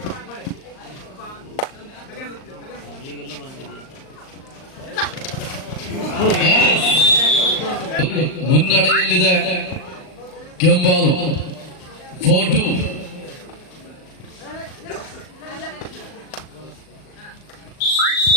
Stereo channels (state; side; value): late; right; 38 ms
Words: ಮುನ್ನಡೆಯಲ್ಲಿದೆ ಕೆಂಬಾಲು 4-2.